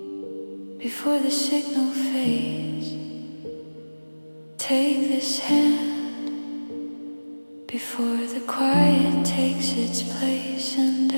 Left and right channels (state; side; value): inverted; both; correlation -1.00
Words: before the signal fades. Take this hand before the quiet takes its place. And